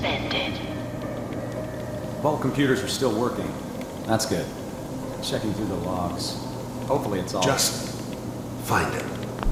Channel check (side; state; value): both; identical; correlation 1.00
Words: Vault computers are still working. That's good. Checking through the logs. Hopefully it's all... Just find it.